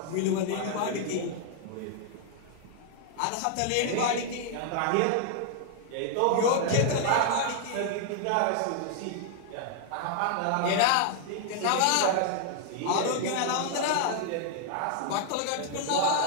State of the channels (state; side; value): different; both; correlation 0.00